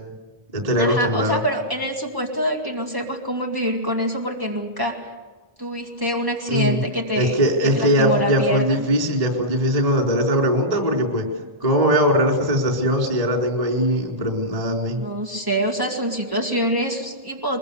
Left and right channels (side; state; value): left; late; 1.1 ms